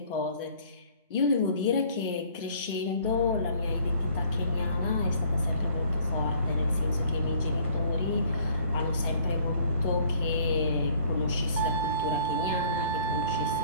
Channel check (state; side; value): inverted; both; correlation -0.56